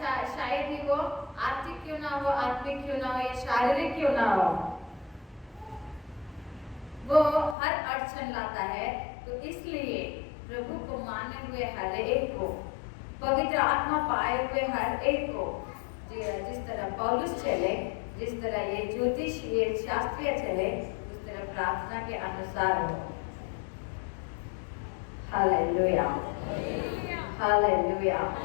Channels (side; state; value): right; drops out; at 7.6 s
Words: शायद ही वो आर्थिक क्यों ना हो, आत्मिक क्यों ना हो, या शारीरिक क्यों ना हो, वो हर अड़चन लाता है। तो इसलिए प्रभु को माने हुए हर एक को, पवित्र आत्मा पाए हुए हर एक को, जिस तरह पौलुस चले, जिस तरह ये ज्योतिष ये शास्त्रीय चले, उस तरह प्रार्थना के अनुसार हो। हालेलुया। हालेलुया।